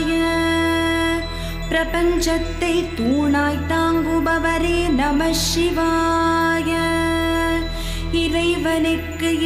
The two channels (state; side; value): identical; both; correlation 1.00